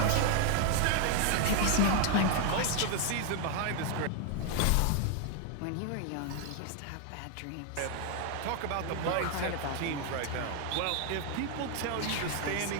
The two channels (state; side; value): different; both; correlation 0.00